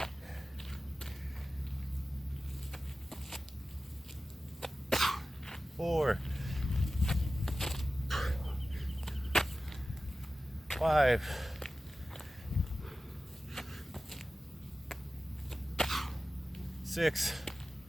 4. 5. 6.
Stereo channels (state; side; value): normal; both; correlation 0.95